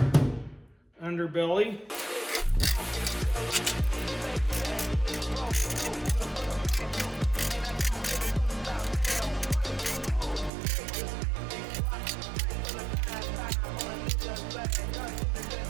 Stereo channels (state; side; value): drops out; left; at 10.5 s